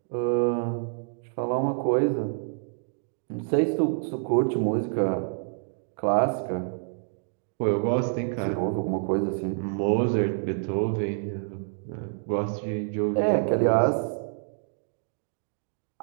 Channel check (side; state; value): left; silent; digital silence